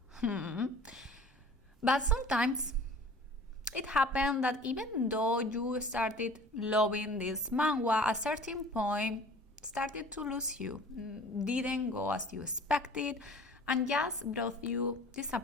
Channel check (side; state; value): both; normal; correlation 0.46